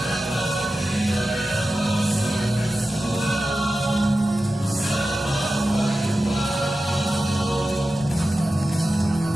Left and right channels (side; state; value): both; normal; correlation 0.93